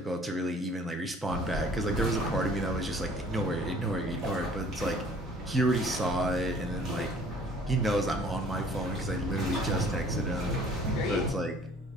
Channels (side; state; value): both; normal; correlation 0.54